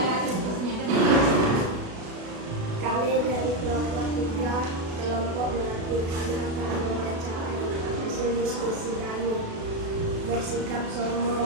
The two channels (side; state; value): left; late; 36 ms